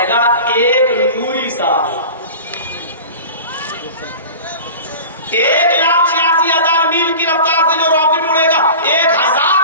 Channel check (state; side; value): inverted; both; correlation -0.36